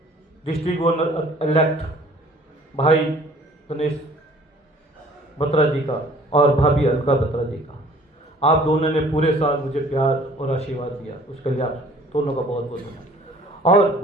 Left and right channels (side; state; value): both; normal; correlation 0.53